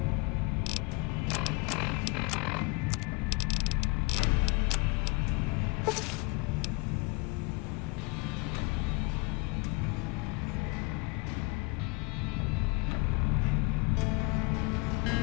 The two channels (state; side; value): quieter; right; 27.4 dB